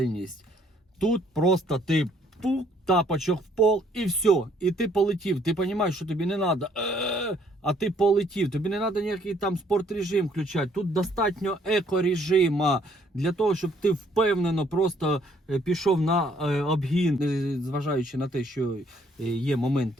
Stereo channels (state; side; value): normal; both; correlation 0.65